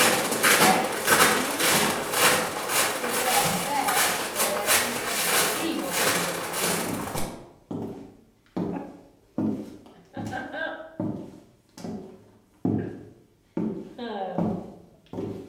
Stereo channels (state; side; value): identical; both; correlation 1.00